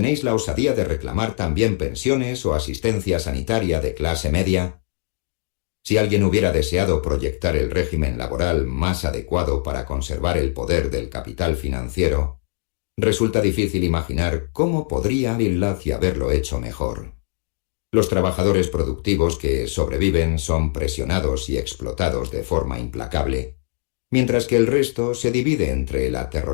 la osadía de reclamar también pensiones o asistencia sanitaria de clase media». Si alguien hubiera deseado proyectar el régimen laboral más adecuado para conservar el poder del capital financiero, resulta difícil imaginar cómo podría haberlo hecho mejor. Los trabajadores productivos que sobreviven son presionados y explotados de forma implacable, mientras que el resto se divide entre el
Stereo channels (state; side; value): silent; right; digital silence